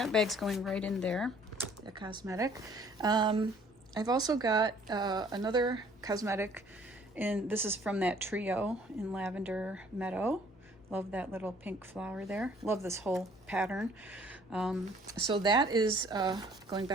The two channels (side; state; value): both; normal; correlation 0.57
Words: bag's going right in there, the cosmetic. I've also got another cosmetic, and this is from that trio in Lavender Meadow. Love that little pink flower there. Love this whole pattern. So that is going